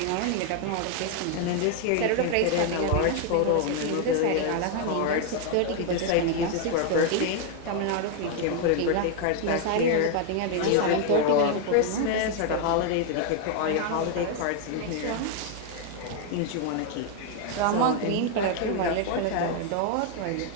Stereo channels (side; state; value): both; different; correlation 0.00